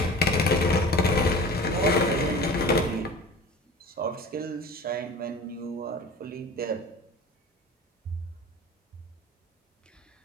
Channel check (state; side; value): normal; both; correlation 0.39